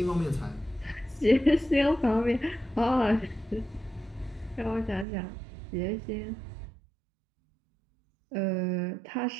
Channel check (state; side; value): drops out; left; at 5.1 s